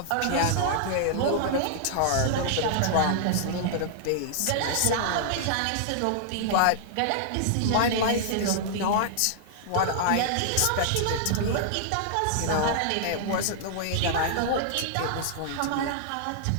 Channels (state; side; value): different; both; correlation -0.01